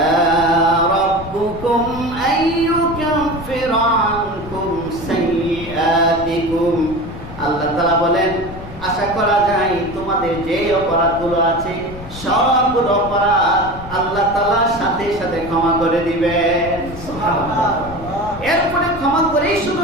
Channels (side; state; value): left; noise; rumble, 13 dB below the sound